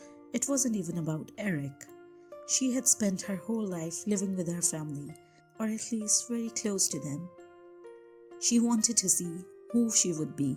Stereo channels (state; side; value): identical; both; correlation 1.00